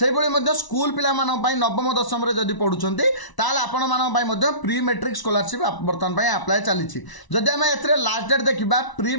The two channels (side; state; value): right; late; 1.0 ms